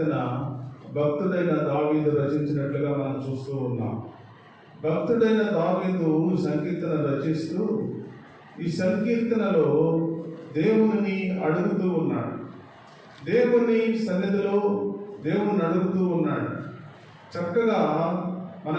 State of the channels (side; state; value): both; identical; correlation 1.00